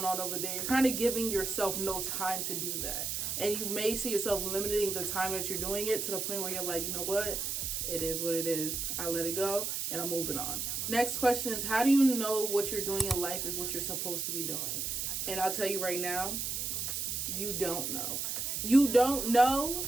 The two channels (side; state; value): right; noise; hiss, 2 dB below the sound